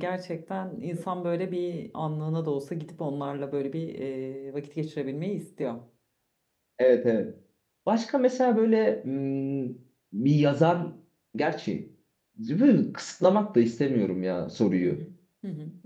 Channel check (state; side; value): identical; both; correlation 1.00